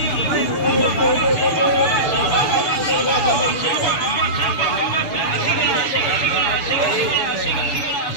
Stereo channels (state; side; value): late; right; 6.9 ms